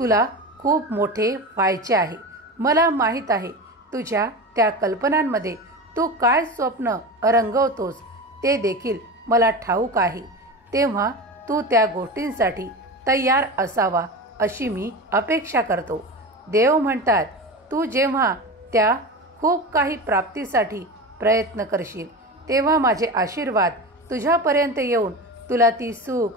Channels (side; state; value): both; normal; correlation 0.26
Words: खूप मोठे व्हायचे आहे. मला माहीत आहे तुझ्या त्या कल्पनांमध्ये तू काय स्वप्न रंगवतोस ते देखील मला ठाऊक आहे. तेव्हा तू त्या गोष्टींसाठी तयार असावा अशी मी अपेक्षा करतो. देव म्हणतात, तू जेव्हा त्या खूप काही प्राप्तीसाठी प्रयत्न करशील, तेव्हा माझे आशीर्वाद तुझ्यापर्यंत येऊन तुला ती सुख,